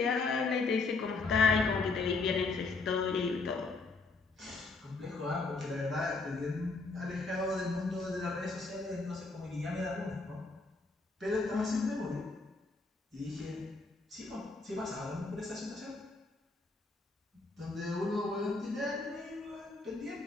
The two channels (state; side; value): quieter; right; 3.8 dB